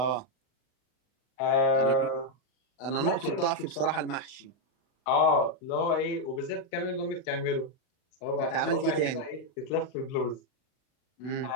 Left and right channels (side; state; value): right; late; 39 ms